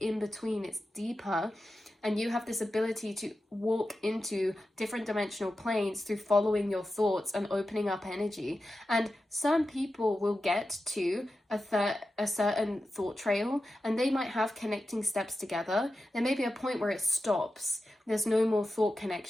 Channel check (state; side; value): normal; both; correlation 0.92